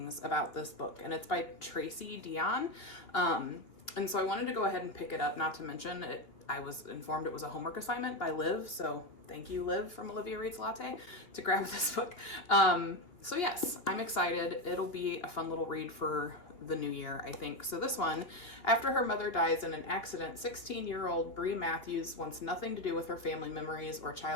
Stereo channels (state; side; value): late; right; 2.8 ms